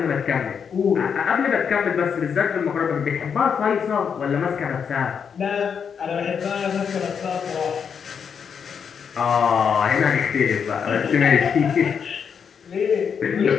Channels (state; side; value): quieter; right; 6.9 dB